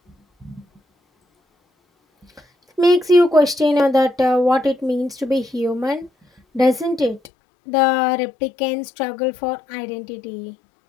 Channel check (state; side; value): drops out; right; at 7.3 s